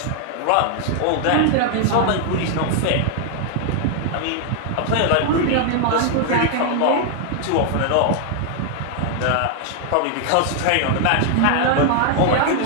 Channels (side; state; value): both; different; correlation 0.00